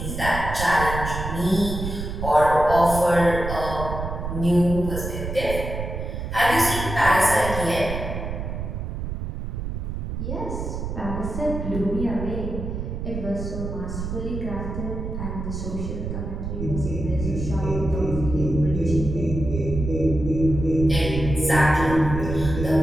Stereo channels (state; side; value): noise; right; rumble, 5 dB below the sound